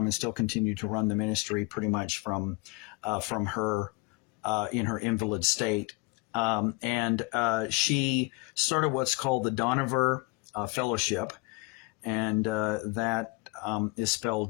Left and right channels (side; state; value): right; quieter; 26.6 dB